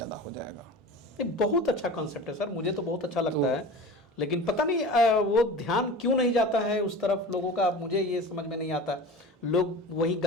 हो जाएगा। ये बहुत अच्छा कॉन्सेप्ट है सर, मुझे तो बहुत अच्छा लगता है। लेकिन पता नहीं वो ध्यान क्यों नहीं जाता है उस तरफ लोगों का, मुझे ये समझ में नहीं आता। लोग वही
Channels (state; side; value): normal; both; correlation 0.35